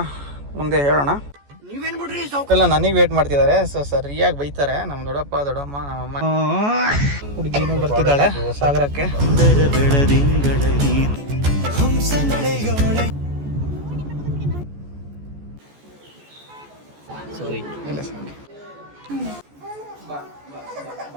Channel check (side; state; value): left; late; 14 ms